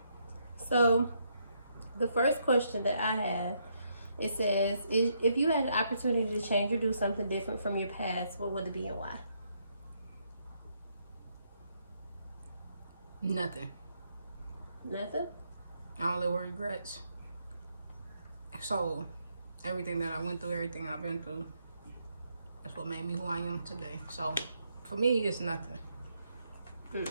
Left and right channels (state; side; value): inverted; both; correlation -0.75